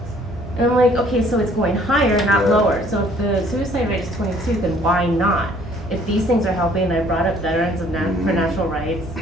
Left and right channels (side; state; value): both; normal; correlation 0.59